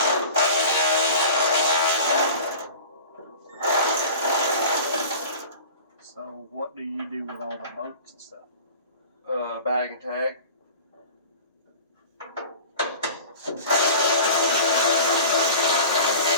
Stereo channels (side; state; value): both; inverted; correlation -0.39